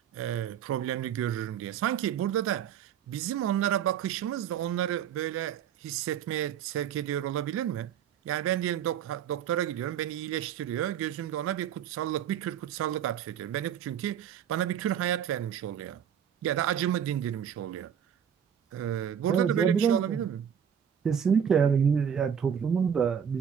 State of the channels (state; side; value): quieter; left; 8.7 dB